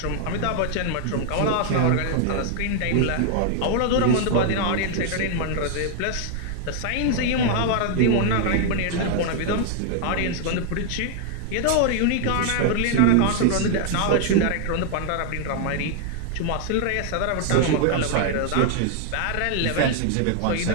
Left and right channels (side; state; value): both; different; correlation 0.00